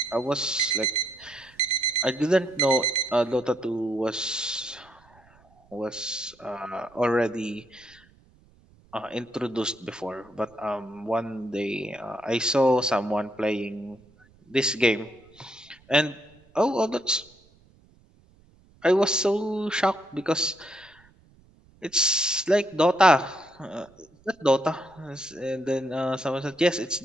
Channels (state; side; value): noise; right; rumble, 29 dB below the sound